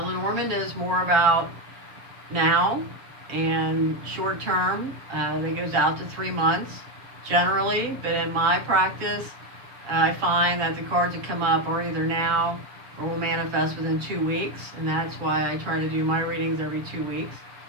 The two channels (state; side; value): late; left; 7.4 ms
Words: is more about now and short term. It goes out to 3 months generally, but in my practice, I find that the cards that come up are either now or will manifest within 2 weeks, and that's why I try to do my readings every 2 weeks.